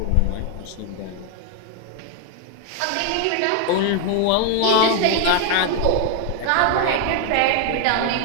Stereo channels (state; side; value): different; both; correlation 0.00